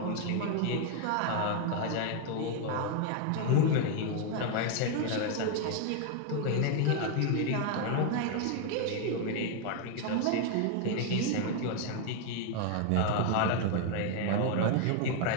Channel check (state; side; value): different; both; correlation 0.01